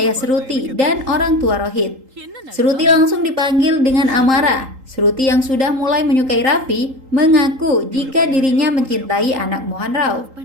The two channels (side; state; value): left; late; 3.8 ms